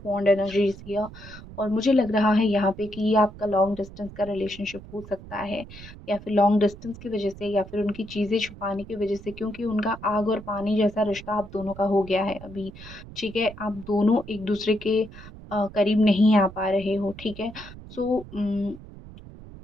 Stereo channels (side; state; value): right; noise; rumble, 16 dB below the sound